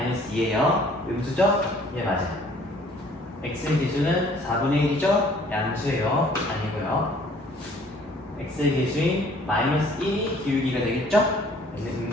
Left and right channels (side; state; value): both; normal; correlation 0.57